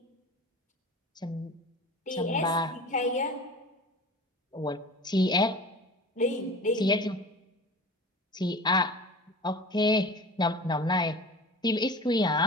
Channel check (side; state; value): both; normal; correlation 0.37